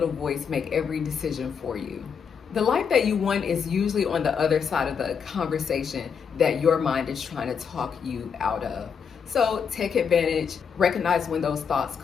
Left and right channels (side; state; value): right; quieter; 6.7 dB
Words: voice make every decision for you. The life that you want is usually on the other side of the conversation that your mind is trying to talk you out of. So take advantage, recognize when those thoughts